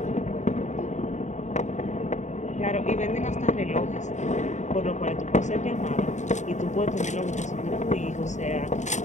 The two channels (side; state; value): right; late; 0.34 ms